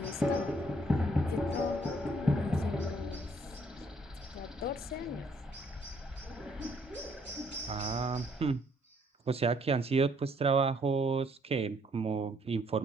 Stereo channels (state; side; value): normal; both; correlation 0.67